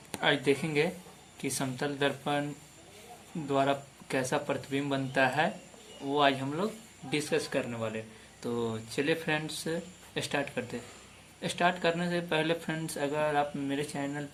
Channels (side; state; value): both; identical; correlation 1.00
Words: आज देखेंगे कि समतल दर्पण द्वारा कैसा प्रतिबिंब बनता है। वो आज हम लोग डिस्कस करने वाले। तो चलिए फ्रेंड्स, स्टार्ट करते हैं। स्टार्ट करने से पहले फ्रेंड्स, अगर आप मेरे चैनल